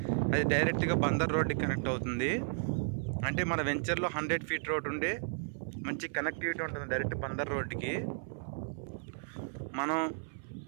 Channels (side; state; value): left; silent; 55 dB below the other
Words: అది డైరెక్ట్గా బందర్ రోడ్డుకి కనెక్ట్ అవుతుంది. అంటే మన వెంచర్లో 100 ఫీట్ రోడ్ ఉండే మంచి కనెక్టివిటీ ఉంటుంది డైరెక్ట్ బందర్ రోడ్డుకి. మనం